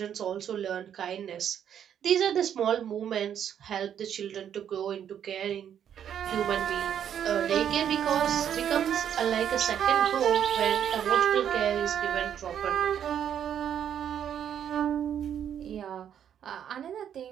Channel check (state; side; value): quieter; left; 9.2 dB